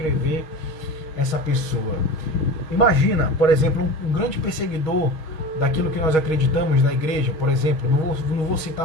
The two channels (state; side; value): late; right; 6.3 ms